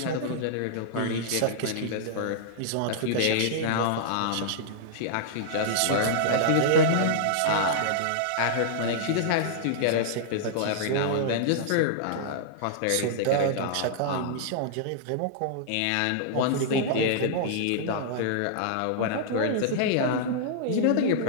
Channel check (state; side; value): different; both; correlation -0.02